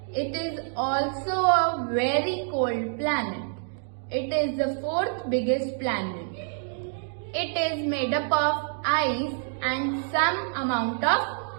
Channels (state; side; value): silent; left; 60 dB below the other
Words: It is also a very cold planet. It is the fourth biggest planet. It is made up of ice and some amount of